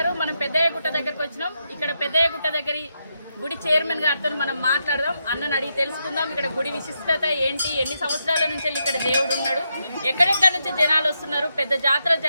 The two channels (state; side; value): inverted; both; correlation -0.83